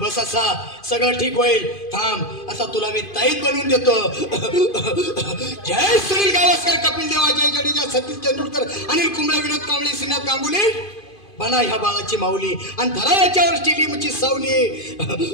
बस, असा सगळं ठीक होईल. थांब, आता तुला मी ताईत बनवून देतो. जय सुनील गावस्कर, कपिल देव, अजय जडेजा, सतीश तेंडुलकर, अनिल कुंबळे, विनोद कांबळे, श्रीनाथ गांगुली. बना ह्या बाळाची माऊली आणि धरा याच्यावर स्टेडियमची सावली.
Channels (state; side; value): late; right; 2.5 ms